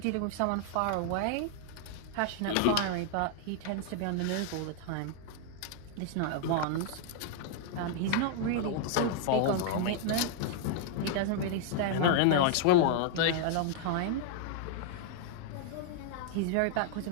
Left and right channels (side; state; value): both; different; correlation 0.00